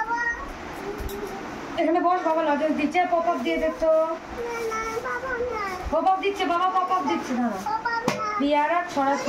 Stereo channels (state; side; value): identical; both; correlation 1.00